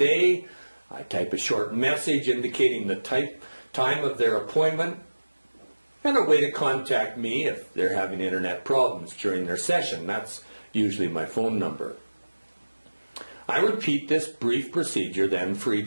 I type a short message indicating the time of their appointment and a way to contact me if they're having internet problems during their session. That's usually my phone number. I repeat this brief procedure then for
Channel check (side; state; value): both; inverted; correlation -1.00